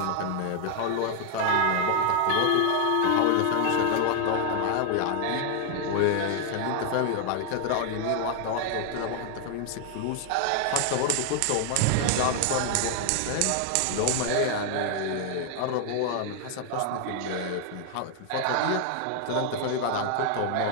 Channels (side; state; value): both; different; correlation 0.00